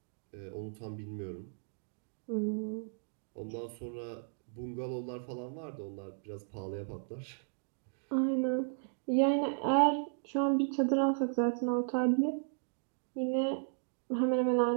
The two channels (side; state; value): left; silent; digital silence